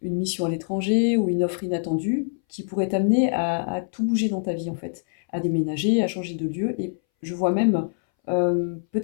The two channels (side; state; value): right; silent; 62 dB below the other